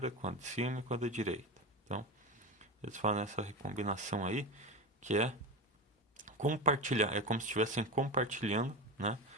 com a de cima e com a da direita. Então, eles fazem essa recombinação aí, que é compartilhar, é como se estivessem compartilhando, né,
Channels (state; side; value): normal; both; correlation 0.21